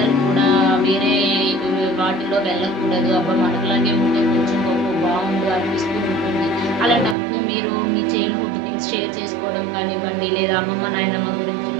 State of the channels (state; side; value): drops out; left; at 7.2 s